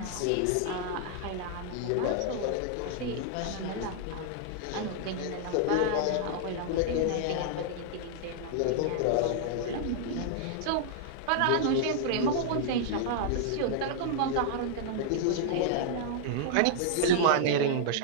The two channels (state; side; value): different; both; correlation -0.01